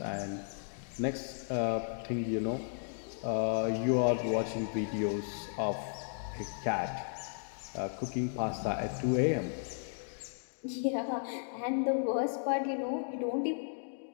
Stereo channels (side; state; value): right; silent; digital silence